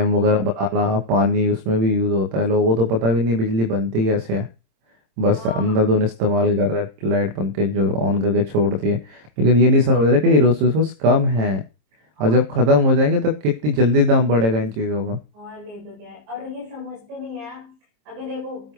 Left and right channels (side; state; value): left; late; 26 ms